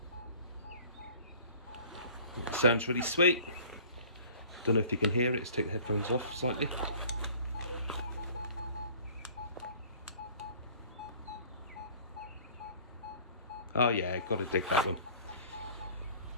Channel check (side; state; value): both; inverted; correlation -0.49